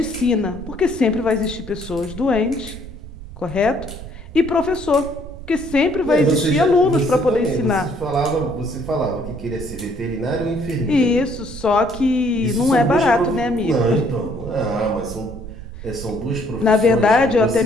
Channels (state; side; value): noise; right; rumble, 13 dB below the sound